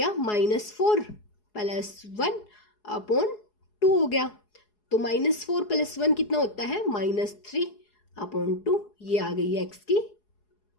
-4 + 1 अपॉन 2 हो गया। तो -4 + 1 कितना होता है, -3 अपॉन 2। ये आ गई है x की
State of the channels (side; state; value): right; late; 4.8 ms